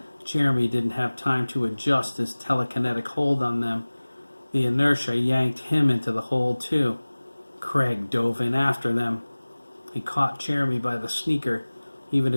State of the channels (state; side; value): inverted; both; correlation -1.00